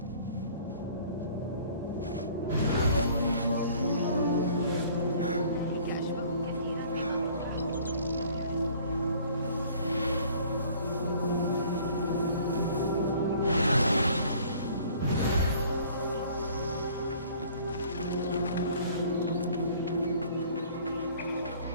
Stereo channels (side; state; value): both; inverted; correlation -0.53